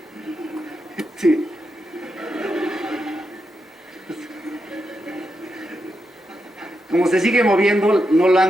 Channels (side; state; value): both; normal; correlation 0.85